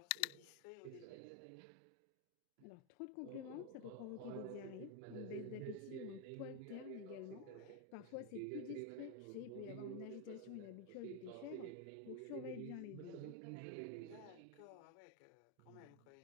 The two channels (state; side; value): different; both; correlation 0.01